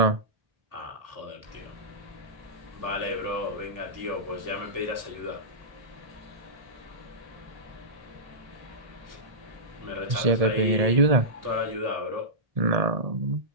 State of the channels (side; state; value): left; late; 1.7 ms